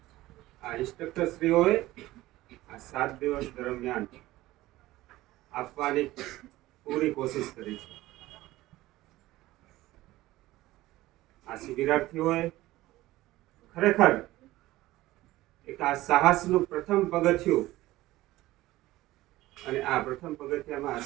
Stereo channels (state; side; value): quieter; left; 17.1 dB